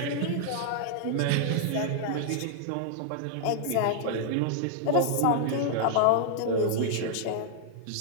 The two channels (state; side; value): different; both; correlation 0.00